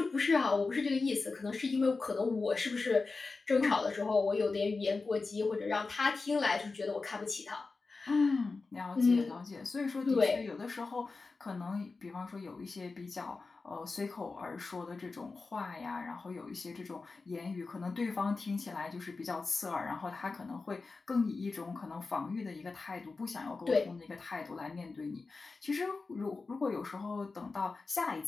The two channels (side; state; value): right; quieter; 4.0 dB